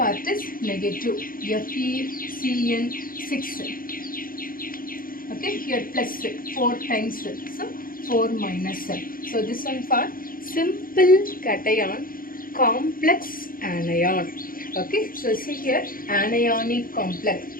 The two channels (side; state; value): right; late; 0.41 ms